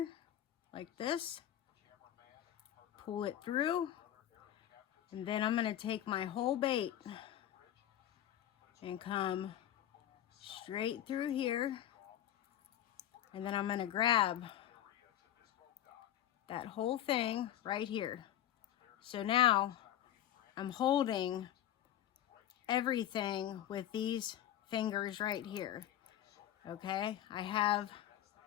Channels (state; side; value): quieter; right; 11.8 dB